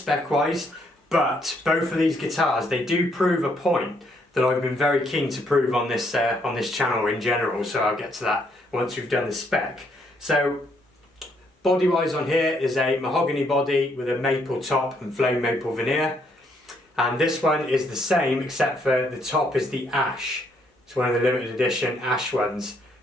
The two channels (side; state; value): both; normal; correlation 0.71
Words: wise, but both of these guitars, they do prove a point that I've been very keen to prove on this channel in general, so I'll get to that once we've done the spec. So body wise on here is a mahogany body with a maple top and flame maple veneer, and this one is the same except for the top is the ash. It's one of the limited edition ash ones,